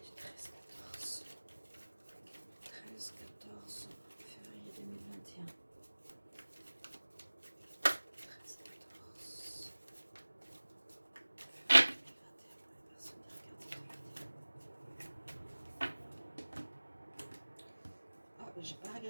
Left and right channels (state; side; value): inverted; both; correlation -1.00